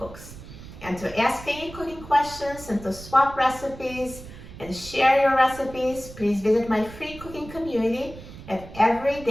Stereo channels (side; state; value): right; noise; rumble, 15 dB below the sound